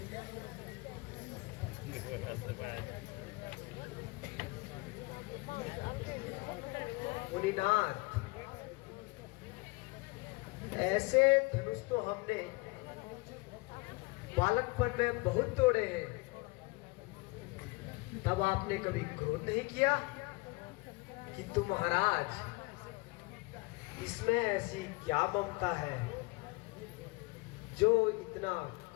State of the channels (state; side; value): quieter; right; 25.2 dB